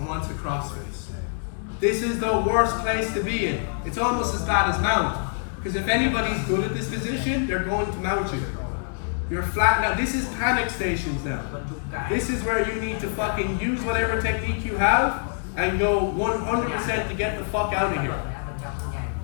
wants a crossface. This is the worst place to be in. It's almost as bad as mount. Because if anybody's good at this position, they're going to mount you. You're flat now. This is panic stations now. This is where you need to fucking use whatever technique you have and go 100% to get the fuck out of here.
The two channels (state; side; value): silent; right; digital silence